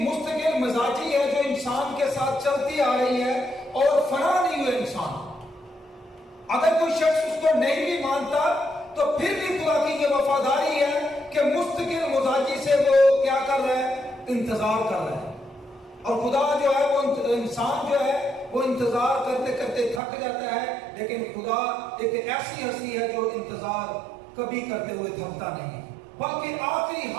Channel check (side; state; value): left; drops out; at 20.0 s